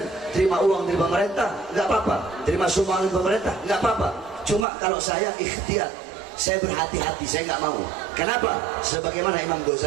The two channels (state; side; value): drops out; left; at 4.7 s